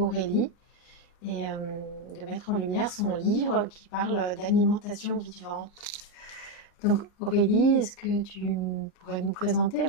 et de mettre en lumière son livre qui parle d'alimentation vivante. Donc Aurélie, est-ce que tu pourrais nous présenter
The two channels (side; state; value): right; late; 33 ms